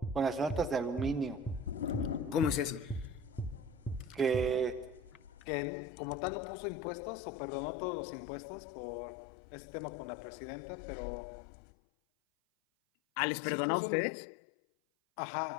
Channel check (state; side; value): drops out; right; at 5.3 s